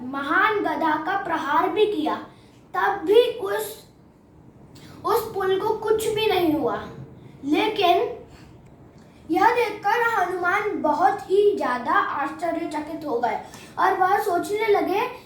महान गदा का प्रहार भी किया, तब भी उस पुल को कुछ भी नहीं हुआ। लेकिन यह देखकर हनुमान बहुत ही ज्यादा आश्चर्यचकित हो गए और वह सोचने लगे,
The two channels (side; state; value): both; identical; correlation 1.00